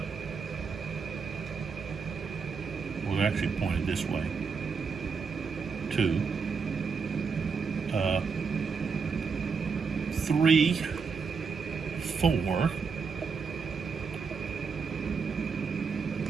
we're actually pointed this way. 2, 3, 4,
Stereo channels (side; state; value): left; quieter; 5.4 dB